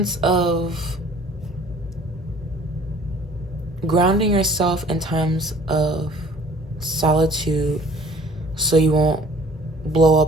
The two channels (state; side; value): normal; both; correlation 0.52